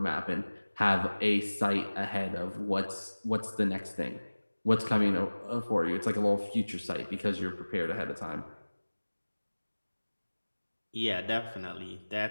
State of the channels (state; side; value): inverted; both; correlation -1.00